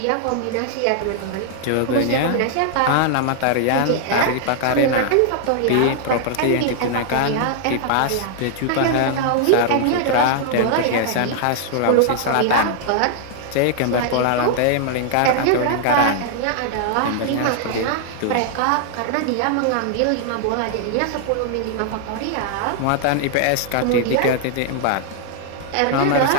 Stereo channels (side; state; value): both; different; correlation 0.00